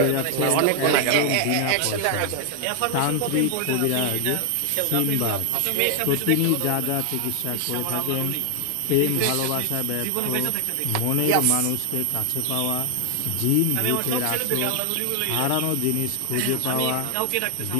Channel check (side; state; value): both; different; correlation 0.00